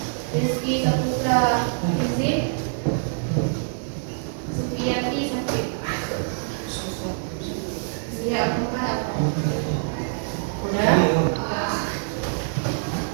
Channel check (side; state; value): left; silent; digital silence